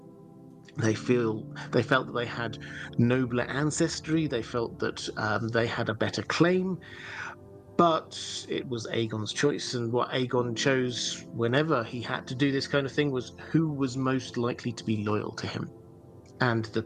They felt that they had nobler ancestry. They felt that they had a better claim. But it was Aegon's choice, and what Aegon chose whenever he had to do this kind of thing was who was most likely to be loyal to him. And the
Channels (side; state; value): both; identical; correlation 1.00